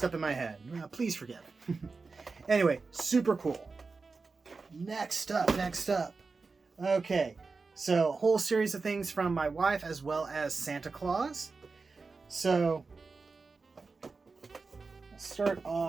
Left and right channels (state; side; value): quieter; left; 4.3 dB